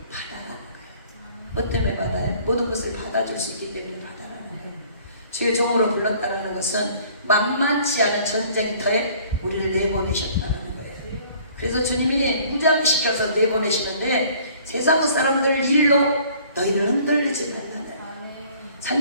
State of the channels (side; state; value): both; inverted; correlation -0.55